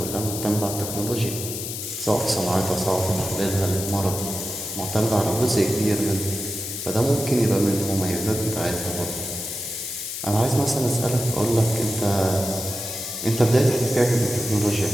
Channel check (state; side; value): noise; left; hiss, 6 dB below the sound